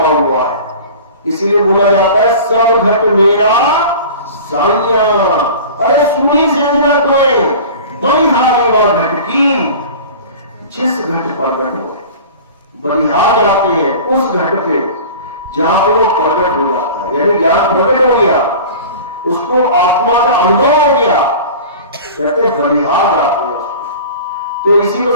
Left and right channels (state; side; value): inverted; both; correlation -0.38